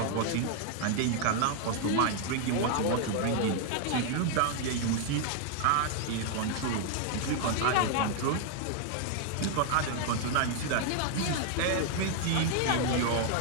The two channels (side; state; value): both; different; correlation 0.00